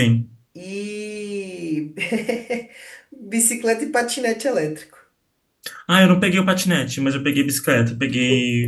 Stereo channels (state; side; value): identical; both; correlation 1.00